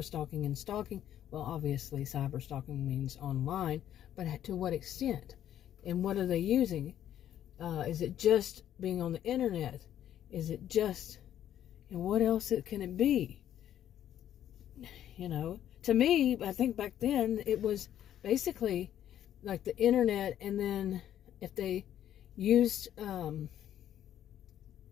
and stalking? Well, obviously, cyber-stalking means online, but to what extent? And what are they using? Is it just being on the internet? Is it just, what else can it be? To me, I think back then, it was basically like the internet, and then if they used, I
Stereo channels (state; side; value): quieter; right; 11.0 dB